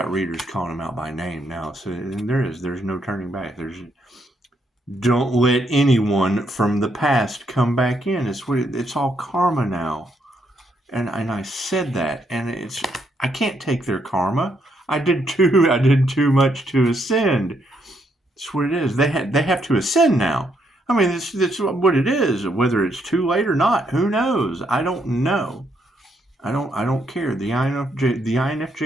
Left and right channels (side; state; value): both; normal; correlation 0.75